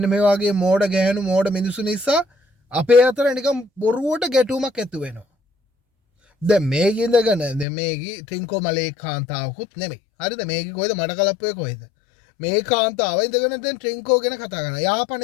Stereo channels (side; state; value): right; drops out; at 7.7 s